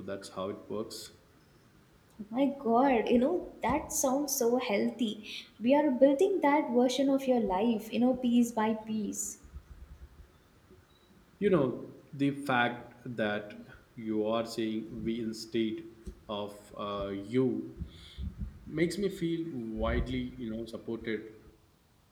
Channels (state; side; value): identical; both; correlation 1.00